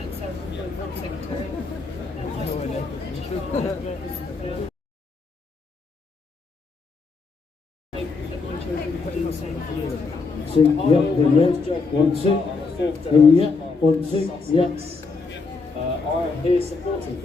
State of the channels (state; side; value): quieter; right; 4.2 dB